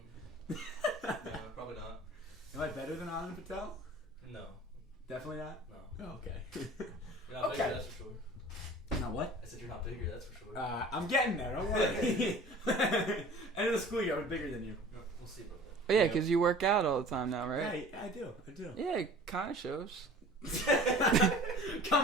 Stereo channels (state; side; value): normal; both; correlation 0.44